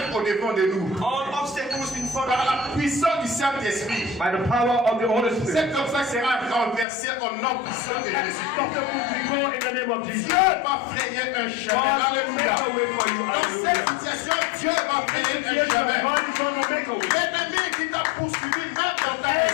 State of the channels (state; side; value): drops out; right; at 6.9 s